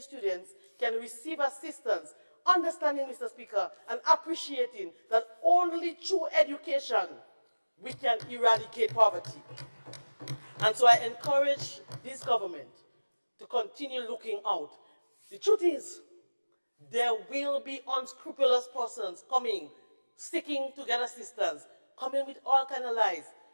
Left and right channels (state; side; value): inverted; both; correlation -1.00